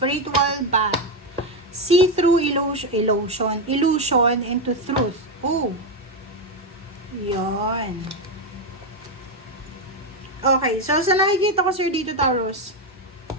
bat. See through illusion into truth. Oh, yon. Okay, so sa nakikita ko sir dito, Taurus,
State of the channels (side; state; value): both; normal; correlation 0.08